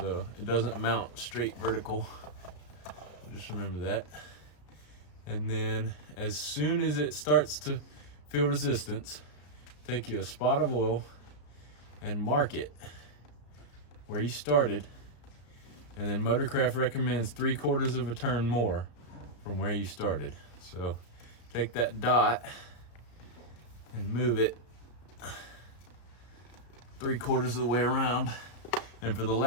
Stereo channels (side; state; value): right; late; 34 ms